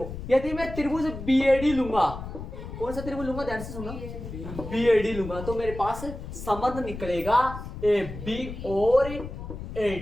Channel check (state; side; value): noise; left; rumble, 9 dB below the sound